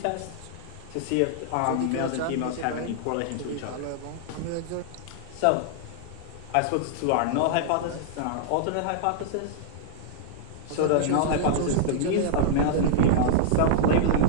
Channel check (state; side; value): different; both; correlation -0.01